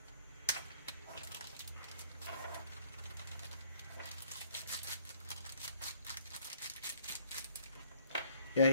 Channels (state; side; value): inverted; both; correlation -0.63